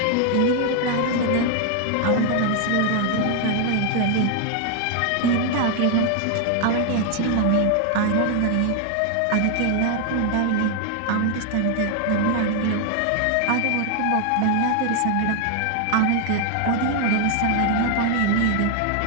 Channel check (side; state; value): both; different; correlation 0.00